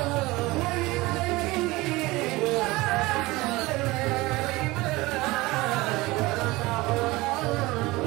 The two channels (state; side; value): quieter; left; 21.1 dB